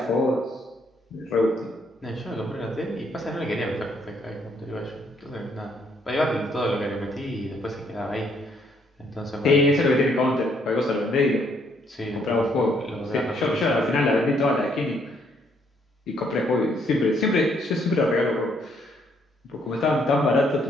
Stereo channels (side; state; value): both; normal; correlation 0.70